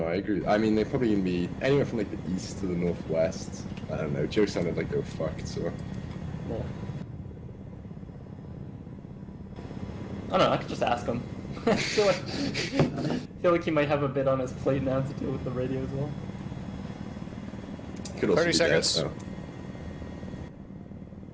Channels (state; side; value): identical; both; correlation 1.00